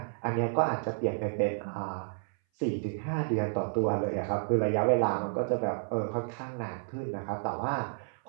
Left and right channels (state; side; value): silent; left; 57 dB below the other